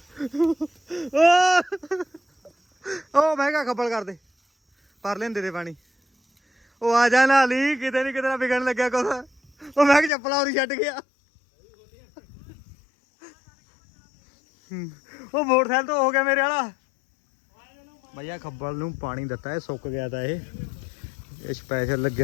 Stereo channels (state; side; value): drops out; right; at 10.1 s